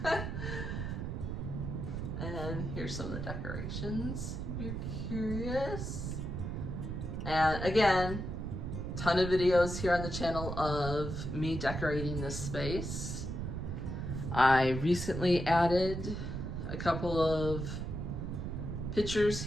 And here's some of the decorations if you're curious. And again, ton of videos here on the channel of me decorating this space. I recently added a couple of pictures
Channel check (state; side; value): noise; right; rumble, 4 dB below the sound